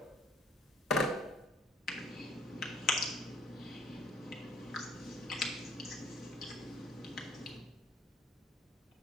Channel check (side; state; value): both; normal; correlation 0.58